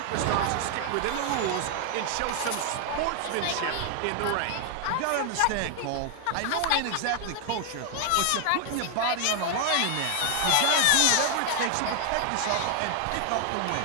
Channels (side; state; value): both; different; correlation 0.00